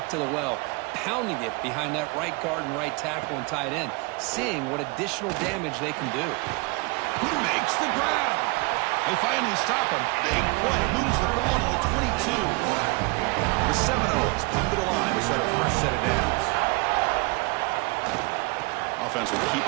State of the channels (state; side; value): quieter; left; 27.6 dB